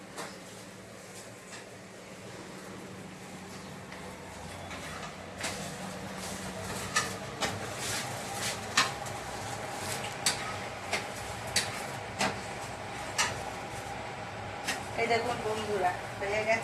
এই দেখুন বন্ধুরা হয়ে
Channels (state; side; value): identical; both; correlation 1.00